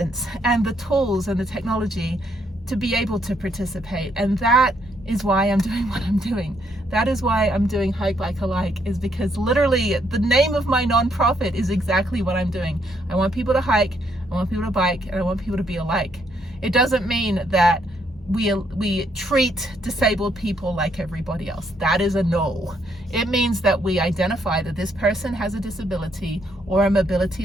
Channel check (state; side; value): normal; both; correlation 0.73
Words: and the tools and the technology to be able to participate. And that is why I'm doing what I'm doing. That is why I'm doing Hike Bike Alike, is because literally the name of my nonprofit is exactly what I'm doing. I want people to hike, I want people to bike, and I want people to be alike. It doesn't mean that we treat disabled people like everybody else. That is a no. It means that we identify that this person has a disability or a